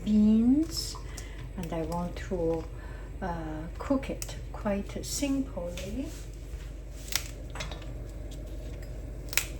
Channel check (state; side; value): identical; both; correlation 1.00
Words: beans and I want to cook it quite simply.